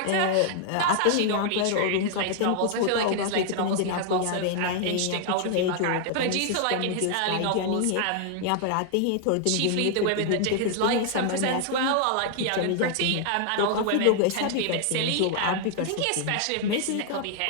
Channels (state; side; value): different; both; correlation 0.00